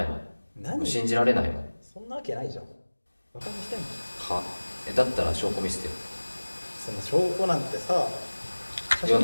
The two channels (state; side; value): inverted; both; correlation -1.00